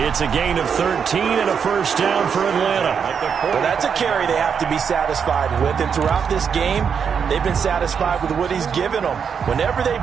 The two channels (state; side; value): quieter; left; 6.9 dB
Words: It's a gain of 13 and a first down for Atlanta. Well, that's a carry they have to be satisfied with. And throughout this game, they've been satisfied with what he's given them. Whenever